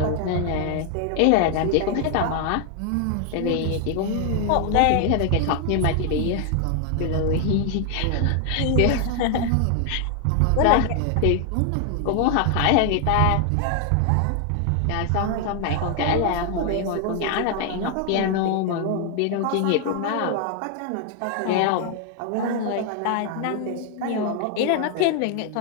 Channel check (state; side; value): different; both; correlation 0.00